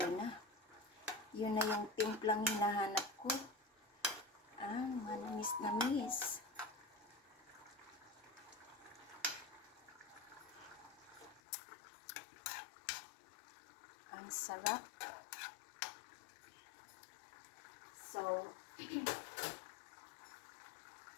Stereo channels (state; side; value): drops out; right; at 11.4 s